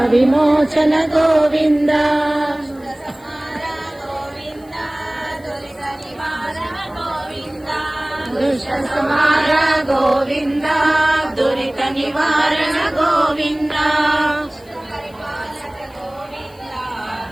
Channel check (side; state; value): left; noise; hiss, 28 dB below the sound